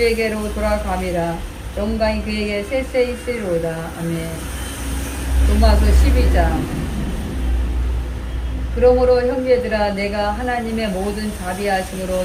돌아감이라. 영광이 그에게 쎄쎄 있으리로다. 아멘. 로마서 12장. 그러므로 형제들아, 내가 하나님의 모든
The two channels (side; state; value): both; identical; correlation 1.00